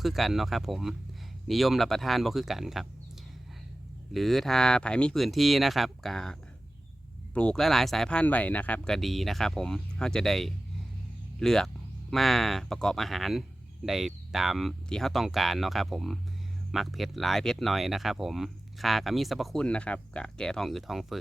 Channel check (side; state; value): both; normal; correlation 0.96